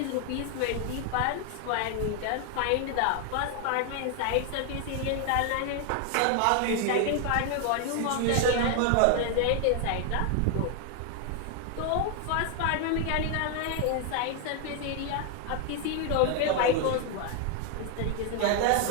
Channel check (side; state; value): both; different; correlation 0.01